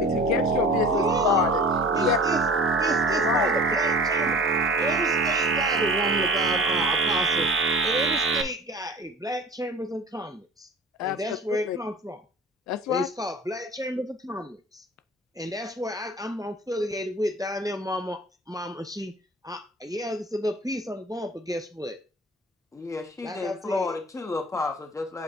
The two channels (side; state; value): both; normal; correlation 0.40